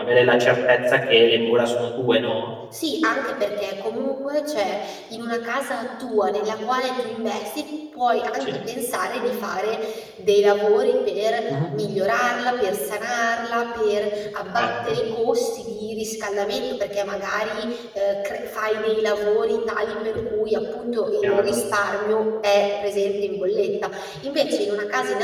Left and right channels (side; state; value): both; identical; correlation 1.00